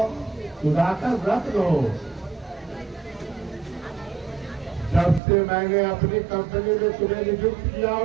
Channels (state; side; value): drops out; left; at 5.2 s